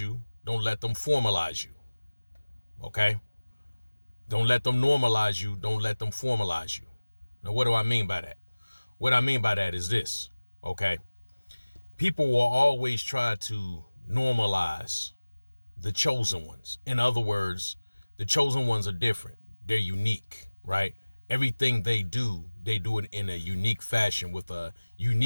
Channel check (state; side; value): inverted; both; correlation -1.00